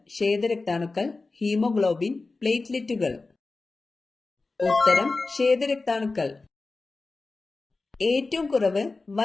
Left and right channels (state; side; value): quieter; right; 3.6 dB